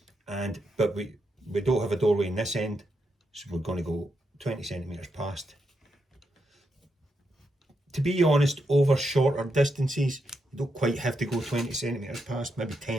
but we don't have a doorway in this end, so we're going to go 20 centimetres past. To be honest, over shorter distances, you don't quite have to go 20 centimetres past, maybe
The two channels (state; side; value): normal; both; correlation 0.83